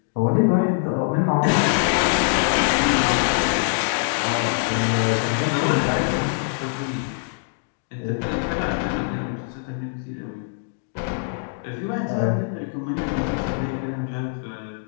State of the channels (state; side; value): silent; right; digital silence